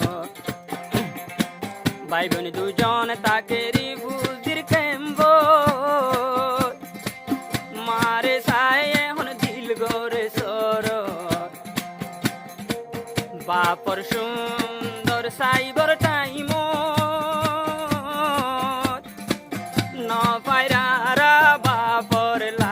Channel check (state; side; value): identical; both; correlation 1.00